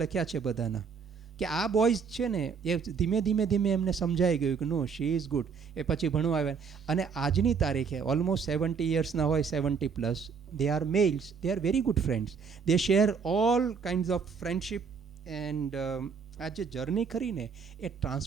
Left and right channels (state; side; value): quieter; left; 6.0 dB